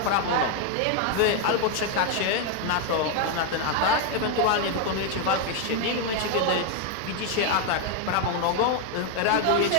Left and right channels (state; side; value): different; both; correlation 0.01